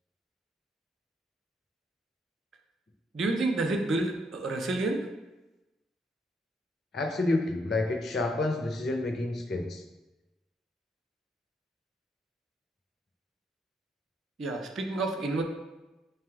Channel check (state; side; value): normal; both; correlation 0.74